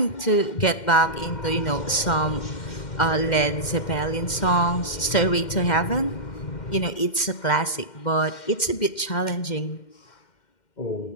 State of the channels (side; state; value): right; late; 2.1 ms